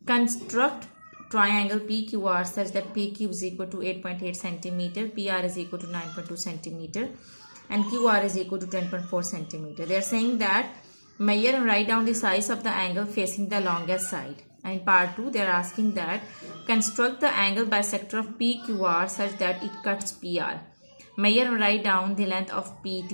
construct triangle PQR such that PQ is equal to 8.8 centimeter, PR is equal to 9.2 centimeter and QR is equal to 10.4 centimeter. They are saying that measure and write down the size of the angle facing the longest side. And in part 2 they are asking that construct the angle bisector of PQR such that it cuts PR. Measure and write down the length of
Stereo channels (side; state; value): both; inverted; correlation -1.00